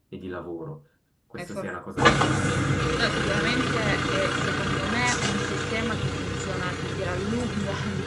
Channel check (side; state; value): both; identical; correlation 1.00